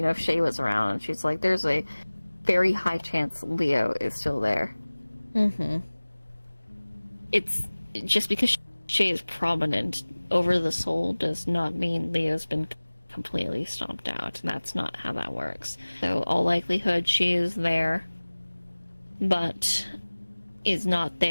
Shay was around, and she's like, there's a very high chance Leo is still there. Mm-hmm. It's just because Shay is prominent over the soul does not mean Leo's been completely stomped out. That's not how that works. So, all likelihood, she is there, but is not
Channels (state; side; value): inverted; both; correlation -1.00